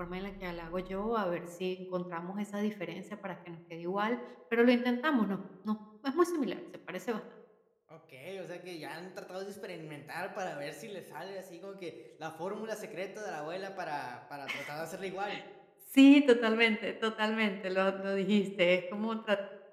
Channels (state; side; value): identical; both; correlation 1.00